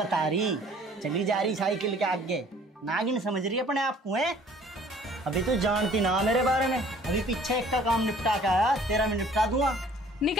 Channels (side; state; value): both; normal; correlation 0.54